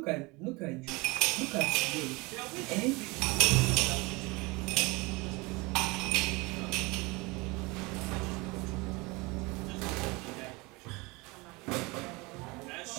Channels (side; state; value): left; quieter; 25.2 dB